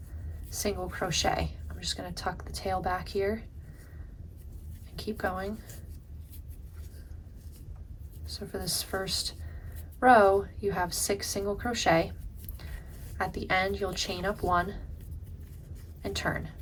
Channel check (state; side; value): identical; both; correlation 1.00